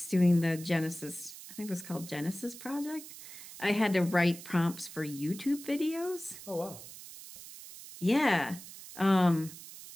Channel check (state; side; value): noise; right; hiss, 15 dB below the sound